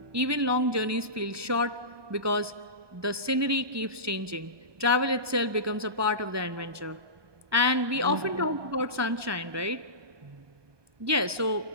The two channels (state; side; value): late; left; 1.2 ms